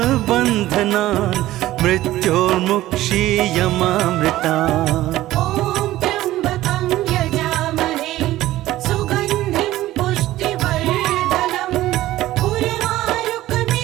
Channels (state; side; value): quieter; left; 15.5 dB